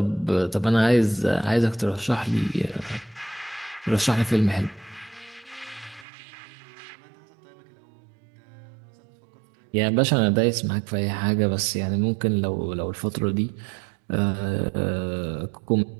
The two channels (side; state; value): left; drops out; at 6.1 s